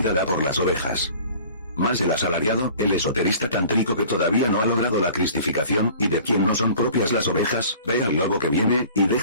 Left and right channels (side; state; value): both; inverted; correlation -0.46